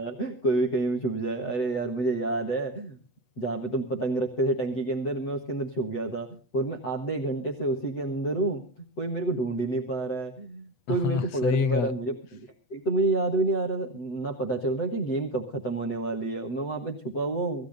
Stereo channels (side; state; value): right; late; 8.4 ms